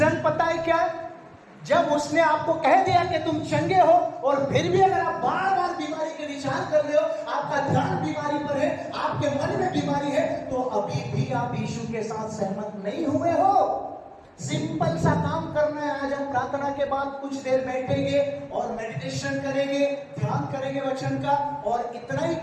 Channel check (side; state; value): both; identical; correlation 1.00